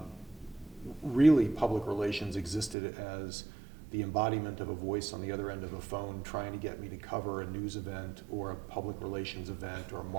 really public relations existed as the embodiment of a voice on the other end of a phone trying to get me to cover a news event or a public relations event or a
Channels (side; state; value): left; drops out; at 2.8 s